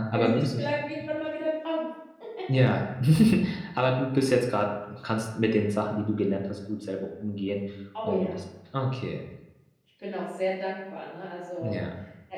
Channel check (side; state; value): both; identical; correlation 1.00